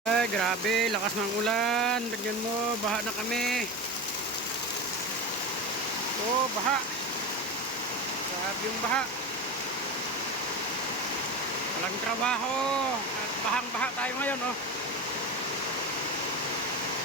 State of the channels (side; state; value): both; normal; correlation 0.24